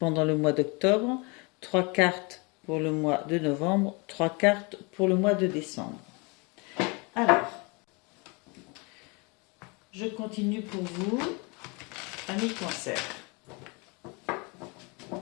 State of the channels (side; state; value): right; quieter; 29.7 dB